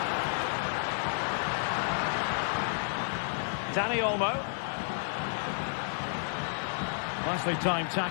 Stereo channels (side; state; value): right; silent; 57 dB below the other